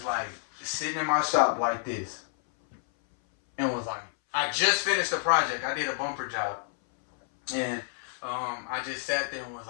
like sitting in my shop like this and was like, I just finished a project. I did a bumper job. And I just sat there and was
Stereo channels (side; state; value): right; silent; 59 dB below the other